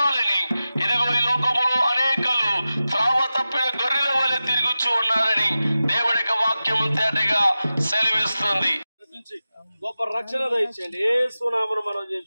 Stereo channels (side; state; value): both; inverted; correlation -0.94